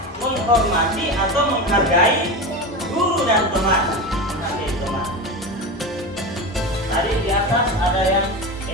menghormati atau menghargai guru dan teman. Tadi di atas ada yang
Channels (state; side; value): normal; both; correlation 0.23